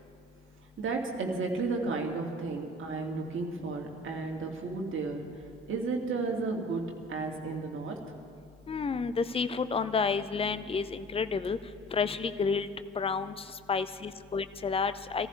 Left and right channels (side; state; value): both; normal; correlation 0.45